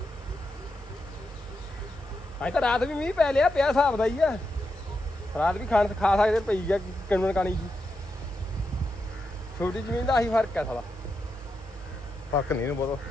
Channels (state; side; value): normal; both; correlation 0.85